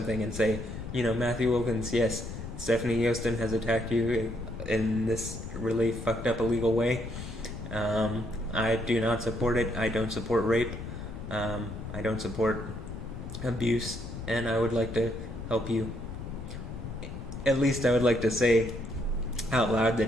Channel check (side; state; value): left; noise; rumble, 9 dB below the sound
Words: and say, you know, Matthew Wilkins, yes, Stefanie Joosten has attacked you in this really fucked up illegal way. I do not support it. I don't support rape. I don't support abuse. And I would like to help you. At least I would like to say out loud